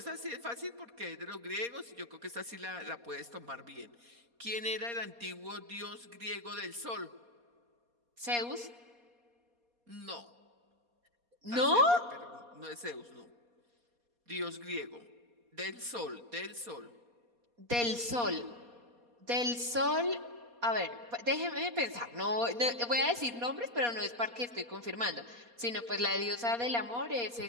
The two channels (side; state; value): left; late; 4.2 ms